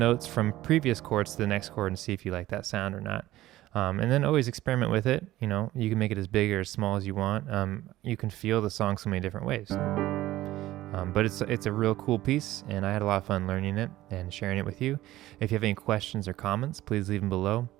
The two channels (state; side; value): quieter; left; 15.7 dB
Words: from previous chords to the next chord and see if you like that sound or not. And then always experiment with it. You can make it as big or as small as you want. You can feel the song so many different ways. But it's a real cool piece, and I had a lot of fun learning it and sharing it with you. If you have any questions or comments, please leave them below.